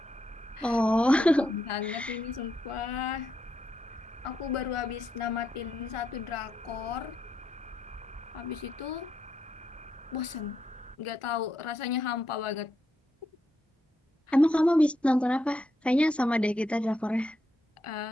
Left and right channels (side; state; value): both; normal; correlation 0.81